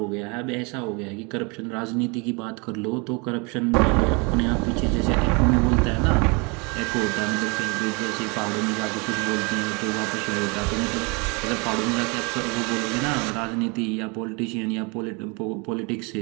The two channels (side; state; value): left; quieter; 30.3 dB